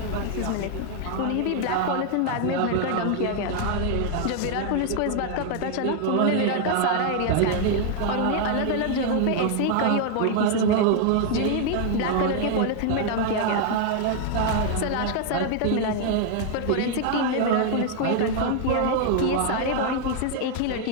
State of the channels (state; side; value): different; both; correlation 0.00